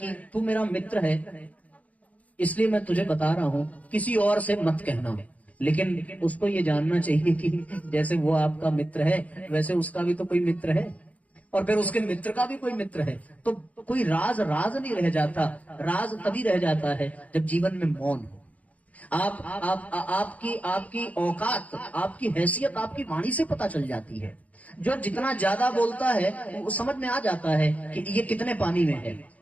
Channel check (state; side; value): late; right; 0.070 ms